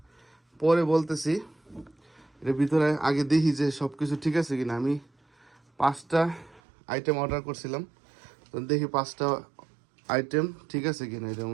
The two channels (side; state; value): left; drops out; at 6.6 s